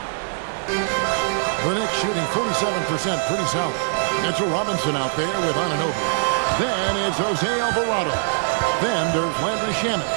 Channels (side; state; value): left; silent; 61 dB below the other